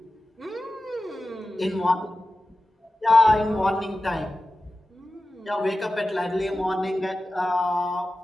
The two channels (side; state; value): both; normal; correlation 0.95